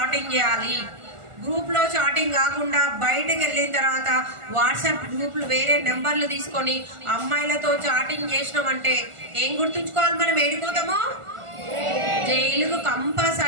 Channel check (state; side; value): late; left; 1.4 ms